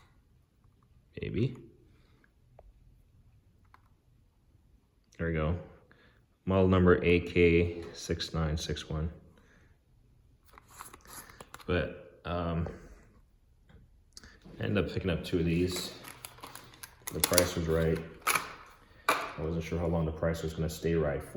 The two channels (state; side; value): identical; both; correlation 1.00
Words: Maybe. There we go. Model number AK6961. But I ended up picking up 2 of these. The price was right. I wasn't sure how long the price was gonna stay right